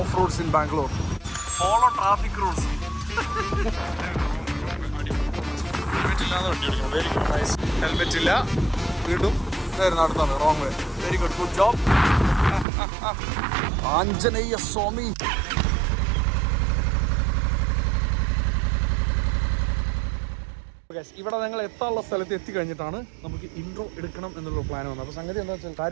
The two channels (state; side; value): drops out; left; at 12.7 s